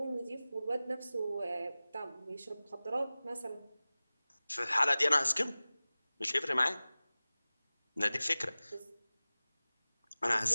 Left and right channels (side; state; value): both; inverted; correlation -0.98